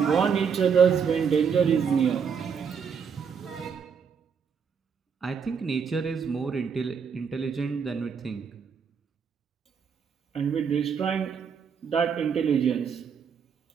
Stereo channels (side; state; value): left; quieter; 6.6 dB